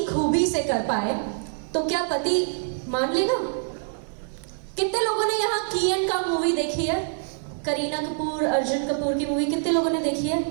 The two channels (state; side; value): silent; left; 62 dB below the other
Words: खूबी से कर पाए तो क्या पति मान लेगा? कितने लोगों ने यहाँ की एंड का मूवी देखी है? करीना कपूर, अर्जुन कपूर की मूवी कितने लोगों ने देखी है?